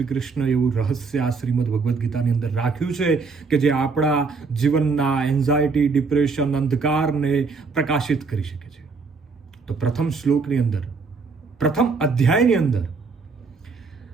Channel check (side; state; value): left; quieter; 4.6 dB